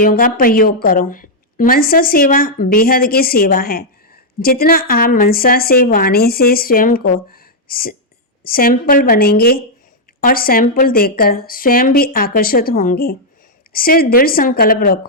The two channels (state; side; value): normal; both; correlation -0.04